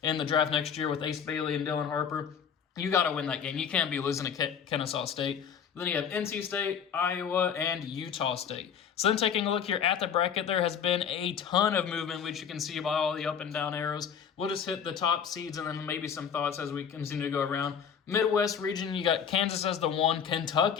in the draft next year with Ace Bailey and Dylan Harper, you got to win that game. You can't be losing to Kennesaw State. Then you have NC State, Iowa, and Utah State. So then taking a look here at the bracket, there has been a ton of movement, which you can see by all the up and down arrows. We'll just hit the top seeds and then maybe some thoughts as we continue to go around. Midwest region, you got Kansas as the 1,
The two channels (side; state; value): right; quieter; 7.6 dB